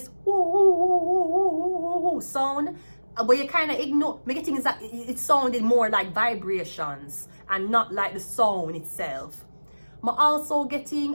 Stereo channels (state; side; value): inverted; both; correlation -1.00